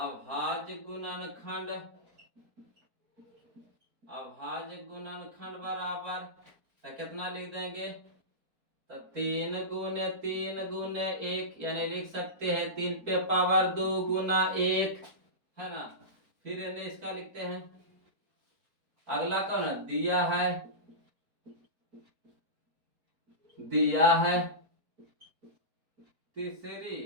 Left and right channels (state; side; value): late; left; 4.6 ms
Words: गुणनखंड बराबर, तो कितना लिख देंगे? तो 3 गुने 1 यानी लिख सकते हैं 3 पे पावर 2 गुना 1, है ना? फिर इन्हें इसका लिखते हैं। अगला कौन है? दिया है